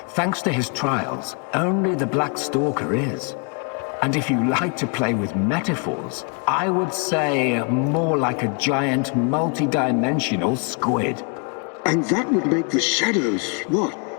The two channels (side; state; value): right; quieter; 36.3 dB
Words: thanks to his trials, only the Black Stalker is. And if you like to play with metaphors, I would say more like a giant multidimensional squid. And that would make the shadows, what?